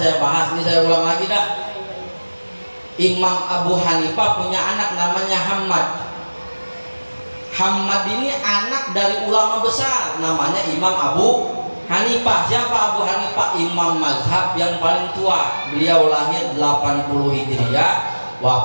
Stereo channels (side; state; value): both; inverted; correlation -1.00